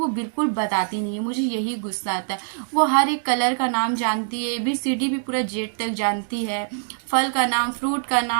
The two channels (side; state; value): left; silent; 63 dB below the other